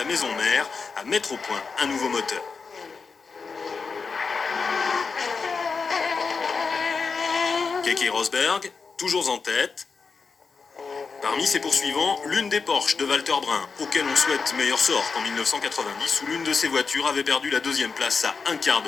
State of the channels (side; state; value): right; quieter; 5.0 dB